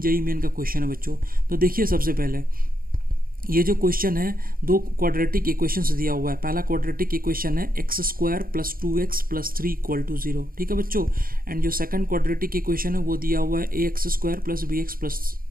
JEE main का question है बच्चों. तो देखिए सबसे पहले ये जो क्वेश्चन है दो क्वाड्रेटिक इक्वेशंस दिया हुआ है. पहला क्वाड्रेटिक इक्वेशन है x square plus 2x plus 3 equal to 0. ठीक है बच्चों. एंड जो सेकंड क्वाड्रेटिक इक्वेशन है वो दिया हुआ है ax square plus bx plus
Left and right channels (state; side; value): late; left; 0.42 ms